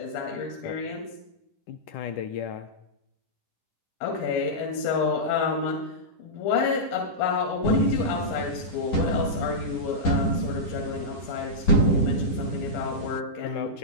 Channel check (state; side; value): late; right; 10 ms